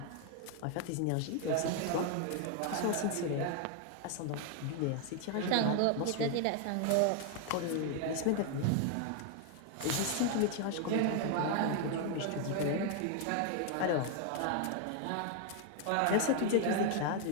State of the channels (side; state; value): both; different; correlation 0.00